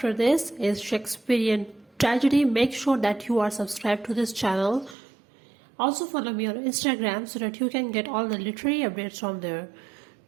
this is Shakespearean Tragedy. Make sure that you are subscribed to this channel. Also follow me on Instagram so that you can get all the literary updates from there.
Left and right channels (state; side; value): drops out; left; at 5.0 s